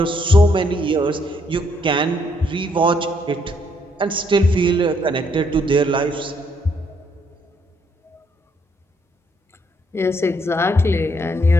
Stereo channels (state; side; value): normal; both; correlation 0.71